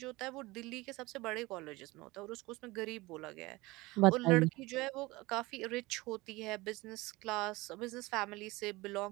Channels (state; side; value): quieter; left; 21.6 dB